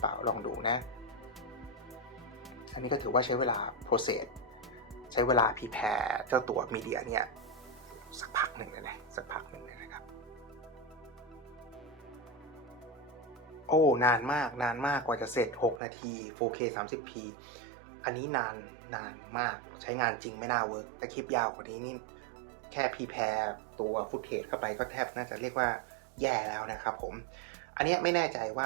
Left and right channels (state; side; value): drops out; left; at 15.8 s